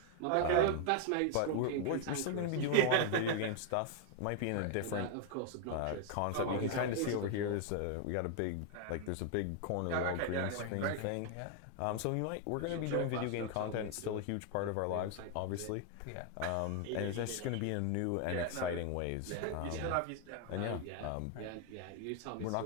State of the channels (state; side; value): different; both; correlation 0.00